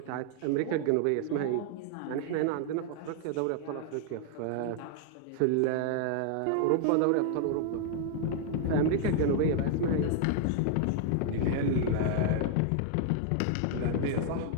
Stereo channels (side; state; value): both; different; correlation 0.00